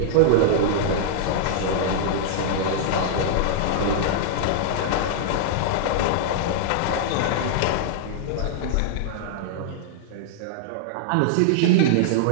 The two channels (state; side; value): different; both; correlation -0.01